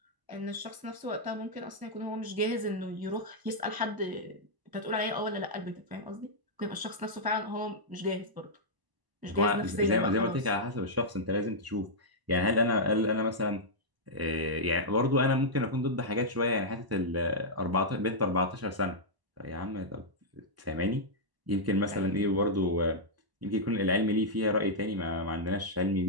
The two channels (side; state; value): left; late; 1.0 ms